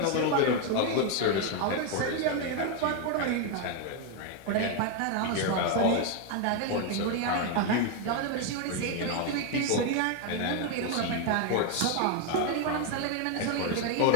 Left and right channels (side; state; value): both; different; correlation 0.01